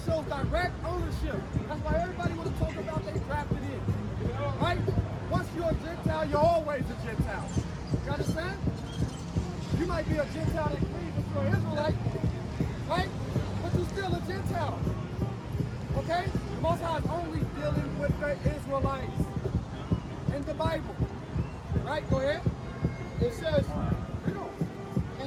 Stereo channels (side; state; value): both; identical; correlation 1.00